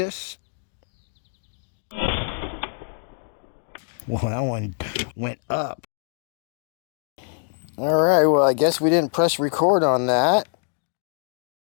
Well, that one went up. All right, well, I guess we didn't press record on that.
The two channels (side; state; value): right; silent; digital silence